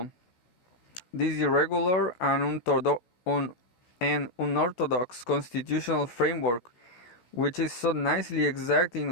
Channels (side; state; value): right; late; 16 ms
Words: This irregular and unorthodox constitutional framework, which is so nicely exact